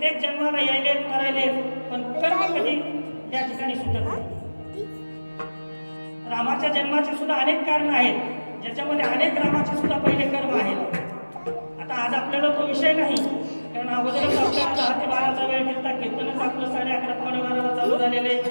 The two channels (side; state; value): both; inverted; correlation -1.00